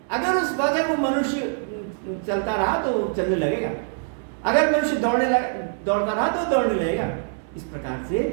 अगर उस वक्त वो मनुष्य चलता रहा तो चलने लगेगा, अगर मनुष्य दौड़ता रहा तो दौड़ने लगेगा। इस प्रकार से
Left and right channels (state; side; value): silent; left; digital silence